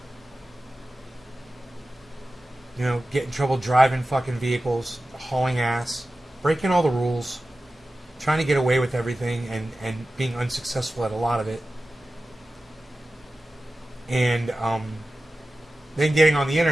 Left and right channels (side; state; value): both; normal; correlation 0.95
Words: You know, get in trouble driving fucking vehicles, hauling ass, breaking all the rules, trying to get away with everything and being unsuccessful at a lot of it. And then getting on the